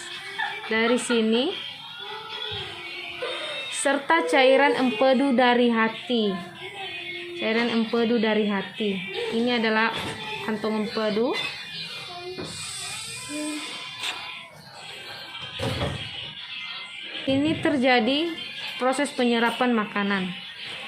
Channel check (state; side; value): identical; both; correlation 1.00